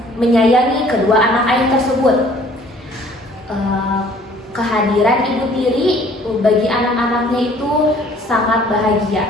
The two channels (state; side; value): normal; both; correlation 0.56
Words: menyayangi kedua anak ayah tersebut. Kehadiran ibu tiri bagi anak-anaknya itu sangat